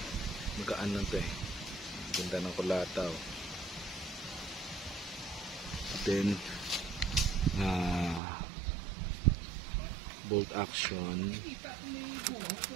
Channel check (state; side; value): drops out; left; at 8.2 s